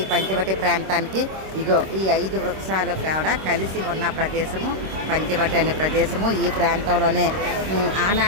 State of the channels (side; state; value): left; late; 26 ms